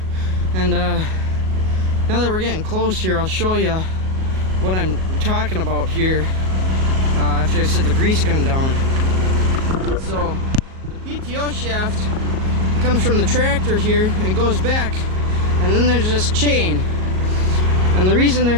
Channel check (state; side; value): late; left; 38 ms